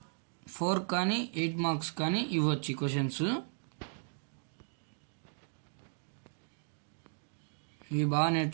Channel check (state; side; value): silent; left; digital silence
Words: 4 కానీ 8 marks కానీ ఇవ్వచ్చు క్వశ్చన్స్. ఇవి బాగా